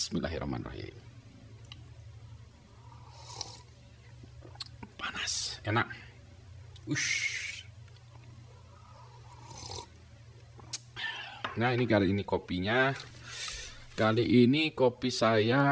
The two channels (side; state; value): both; identical; correlation 1.00